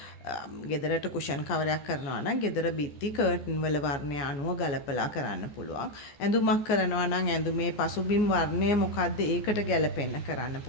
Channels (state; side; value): late; right; 14 ms